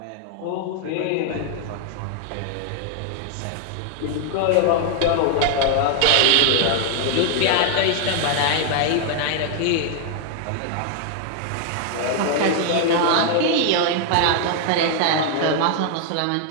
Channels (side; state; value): both; different; correlation 0.00